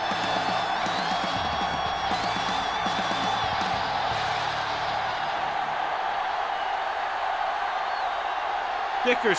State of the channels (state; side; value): identical; both; correlation 1.00